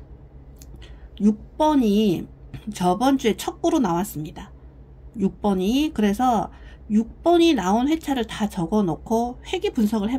6번이 저번 주에 첫 구로 나왔습니다. 6번이. 그래서 6번이 나온 회차를 다 적어 놓고 회귀 분석을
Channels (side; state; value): both; identical; correlation 1.00